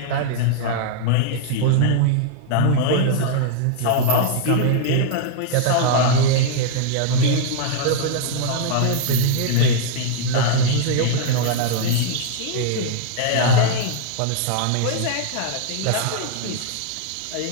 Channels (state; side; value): different; both; correlation -0.01